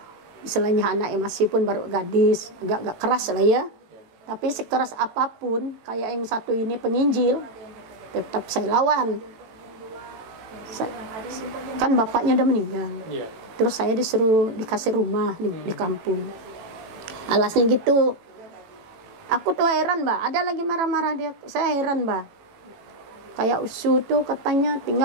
istilahnya anaknya masih pun baru gadis, agak keras lah ya. Tapi sekeras apapun, kayak yang satu ini penginjil, tetap saya lawan. Kan bapaknya udah meninggal. Terus saya dikasih rumah di kampung. Alasnya gitu. Aku tuh heran, Mbak. Ada lagi marah-marah dia. Saya heran, Mbak. Kayak Usu tuh katanya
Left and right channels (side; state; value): left; late; 18 ms